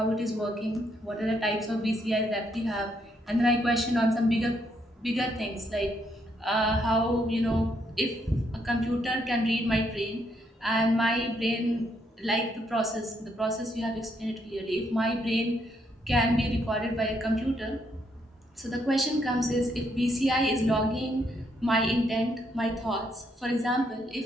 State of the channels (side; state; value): both; normal; correlation 0.74